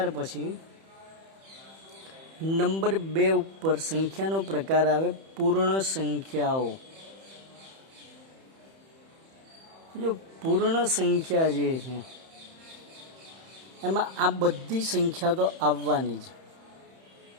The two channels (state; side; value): late; left; 31 ms